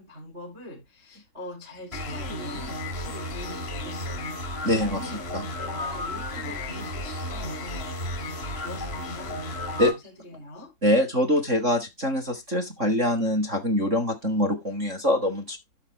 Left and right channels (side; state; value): left; late; 3.6 ms